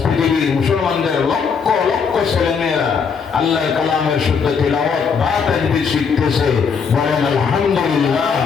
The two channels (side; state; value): right; quieter; 6.0 dB